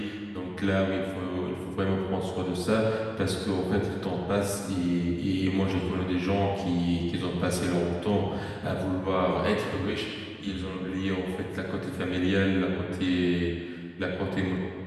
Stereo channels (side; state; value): both; identical; correlation 1.00